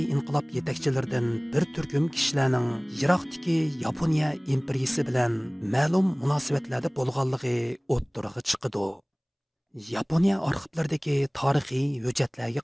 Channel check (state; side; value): identical; both; correlation 1.00